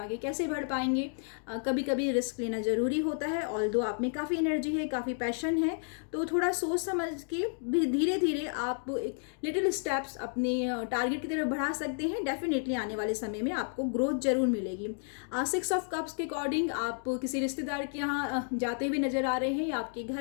कैसे बढ़ पाएंगे। कभी कभी रिस्क लेना ज़रूरी होता है। ऑल्दो आप में काफ़ी एनर्जी है, काफ़ी पैशन है, तो थोड़ा सोच समझ के भी धीरे धीरे आप एक लिटिल स्टेप्स अपने टारगेट की तरफ बढ़ा सकते हैं। डेफिनेटली आने वाले समय में आपको ग्रोथ जरूर मिलेगी। 6 ऑफ कप्स के अकॉर्डिंग आप किसी रिश्तेदार के यहाँ जाते हुए नज़र आ रहे हैं, या आपके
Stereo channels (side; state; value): right; silent; 57 dB below the other